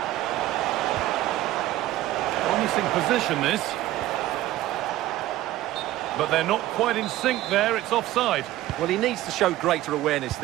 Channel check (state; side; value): quieter; left; 15.2 dB